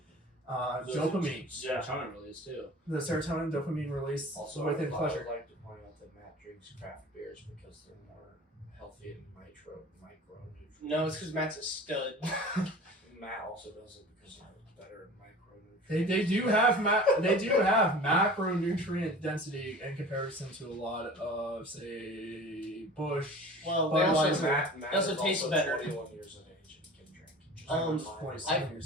dopamine, Serotonin release too. the serotonin dopamine release Also, within I pleasure. would like to point out that Matt drinks craft beers because they're more healthy and micronutrients. No, it's because Matt's a stud. Matt also does it because they're better in micronutrients. They do have macronutrient density in comparison to a lot of, say, Bush, Well, they also- Budweiser. Matt also is tastes better. 21 years of age and can drink. Just 27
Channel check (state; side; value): normal; both; correlation 0.40